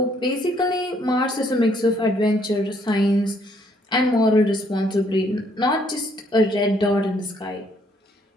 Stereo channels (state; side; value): normal; both; correlation 0.67